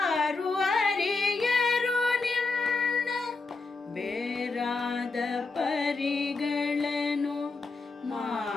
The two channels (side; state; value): right; quieter; 3.9 dB